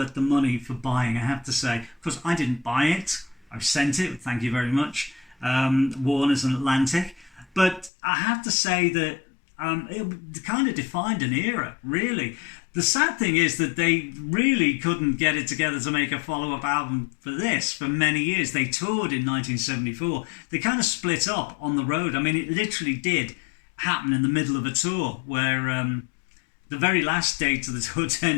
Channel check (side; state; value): right; drops out; at 7.9 s